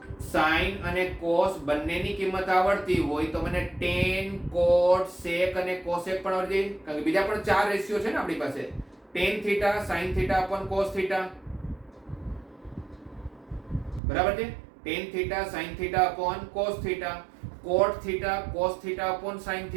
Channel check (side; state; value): left; drops out; at 14.0 s